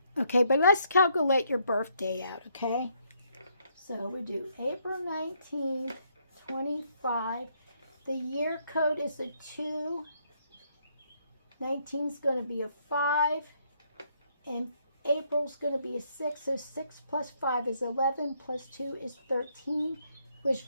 Okay, but let's calculate your birthday out, okay? So we do April 19th, 25. The year code is a 2. 19 is going to be a 5. And April's going to be a 6, so 6 plus 5 is 11, plus 2 is 13, which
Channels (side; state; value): both; inverted; correlation -0.72